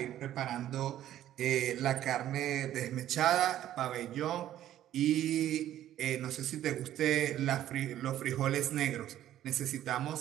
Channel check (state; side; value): quieter; left; 12.3 dB